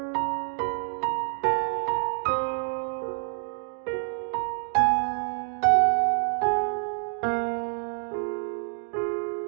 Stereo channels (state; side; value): silent; left; digital silence